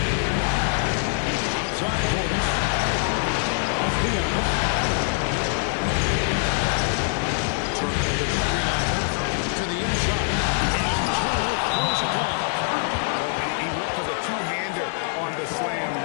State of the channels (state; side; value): silent; right; 62 dB below the other